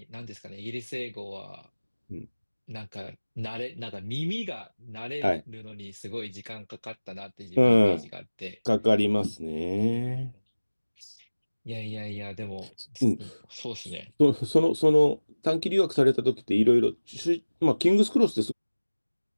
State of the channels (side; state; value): both; inverted; correlation -1.00